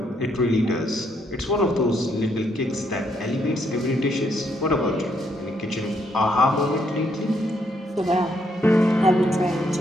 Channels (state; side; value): normal; both; correlation 0.73